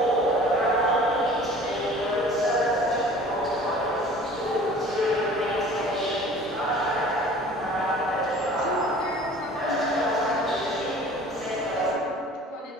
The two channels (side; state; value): both; normal; correlation 0.46